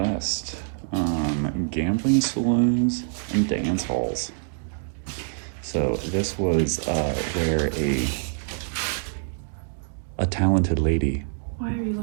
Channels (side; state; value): left; silent; digital silence